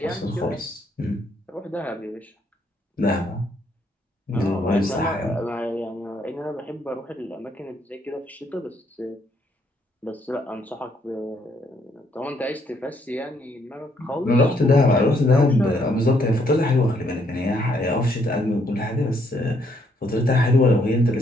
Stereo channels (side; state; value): both; normal; correlation 0.71